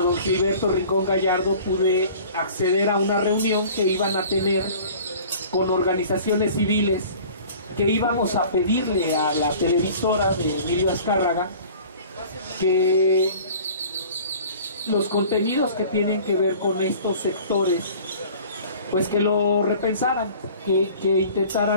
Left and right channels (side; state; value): both; inverted; correlation -0.46